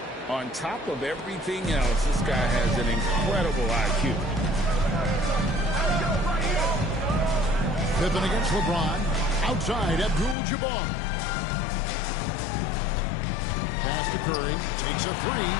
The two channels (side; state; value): right; drops out; at 10.4 s